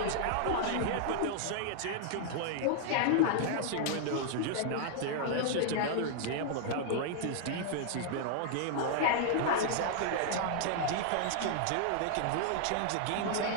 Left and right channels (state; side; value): different; both; correlation -0.01